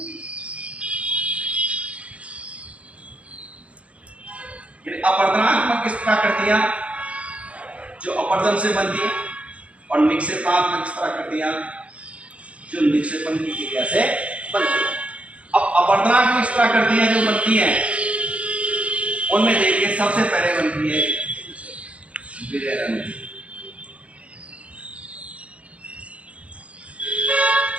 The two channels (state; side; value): late; left; 0.063 ms